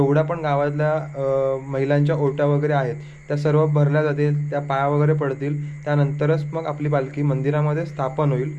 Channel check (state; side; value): identical; both; correlation 1.00